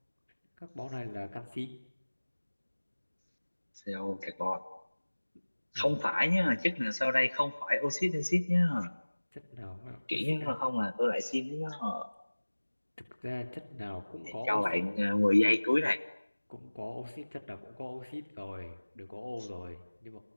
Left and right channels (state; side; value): inverted; both; correlation -1.00